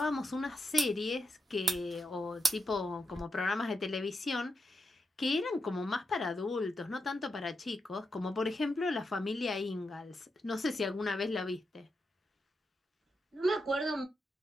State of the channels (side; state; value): both; normal; correlation 0.85